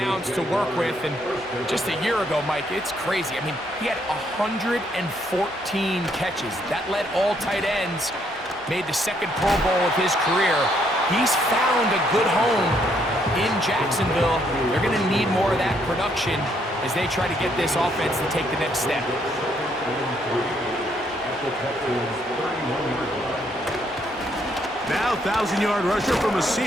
to work with. And just a year ago, Mike, it's crazy. I mean, he had 114 catches. That led all tight ends, made the 2nd Pro Bowl of his career. He's found a good home in Jacksonville. They're going to need more of that production as they try to get this offense to take the next step. Now 1,000-yard rusher from a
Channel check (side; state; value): both; normal; correlation 0.71